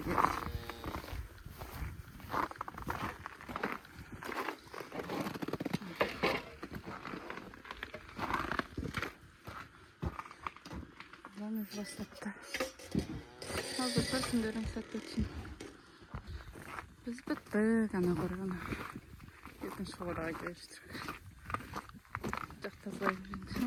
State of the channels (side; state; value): both; identical; correlation 1.00